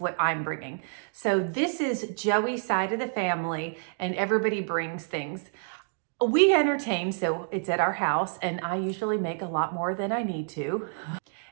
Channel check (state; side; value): silent; left; digital silence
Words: I'm bringing. So this is Joey's side of the family and everybody brings things. We entertain, so it's at our house, and I usually make a lot more than I need to.